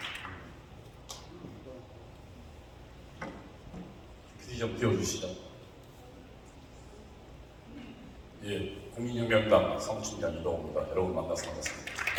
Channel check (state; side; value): identical; both; correlation 1.00